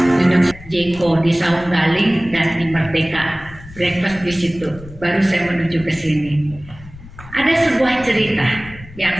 Jeko di Saung Galing dan di Merdeka, breakfast di situ. Baru saya menuju ke sini. Ada sebuah cerita yang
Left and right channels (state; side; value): noise; left; rumble, 18 dB below the sound